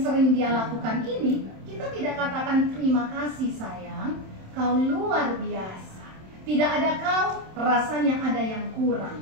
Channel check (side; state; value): left; late; 27 ms